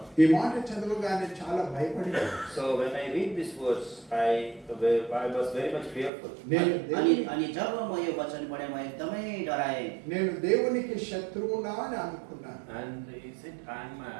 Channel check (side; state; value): left; drops out; at 6.1 s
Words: ఈ మాట చదవగానే చాలా భయపడింది. So when I read these words, I was very much fearful. अनि जब म यो वचन पढेँ म एकदमै डराएँ। నేను దేవునికి శత్రువునా అని అనుకున్నాను. And is it I am